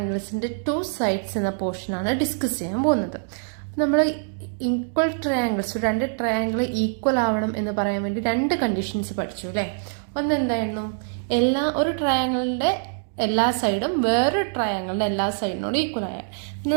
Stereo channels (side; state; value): left; silent; digital silence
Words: 2 സൈഡ്സ് എന്ന പോർഷനാണ് ഡിസ്കസ് ചെയ്യാൻ പോകുന്നത്. നമ്മൾ ഈക്വൽ ട്രയാങ്കിൾസ്, 2 ട്രയാങ്കിൾ ഈക്വൽ ആവണം എന്ന് പറയാൻ വേണ്ടി 2 കണ്ടീഷൻസ് പഠിച്ചു അല്ലേ. ഒന്ന് എന്തായിരുന്നു? ഒരു ട്രയാങ്കിളിൻ്റെ എല്ലാ സൈഡും വേറൊരു ട്രയാങ്കിളിൻ്റെ എല്ലാ സൈഡിനോടും ഈക്വൽ ആയ. പിന്നെ